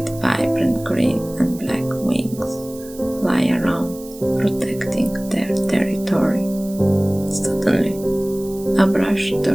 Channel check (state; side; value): noise; right; hiss, 19 dB below the sound